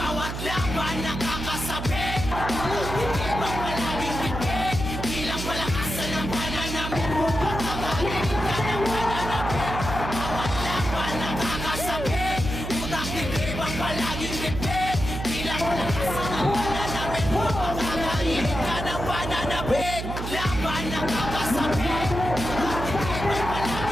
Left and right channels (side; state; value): right; noise; hum, 5 dB below the sound